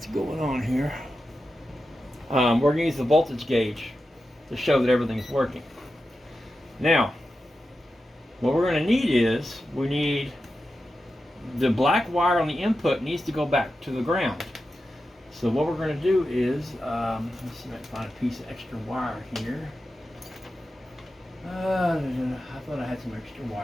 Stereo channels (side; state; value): both; normal; correlation 0.91